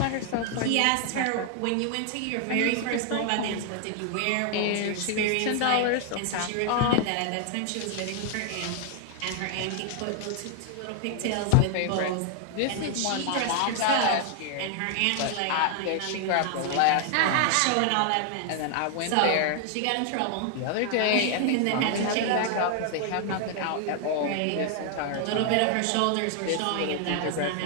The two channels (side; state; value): both; different; correlation 0.00